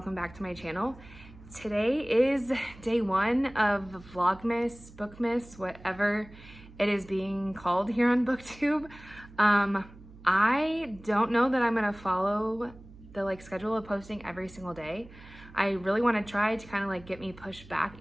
back to my channel. Today is day one of Vlogmas, Bookmas, whatever it is being called here on BookTube. I don't know that I'm gonna follow the schedule of posting every single day. I really want to try to kind of get me pushed back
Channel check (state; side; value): noise; right; hum, 20 dB below the sound